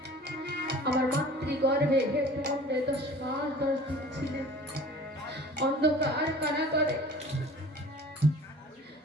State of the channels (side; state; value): both; normal; correlation 0.44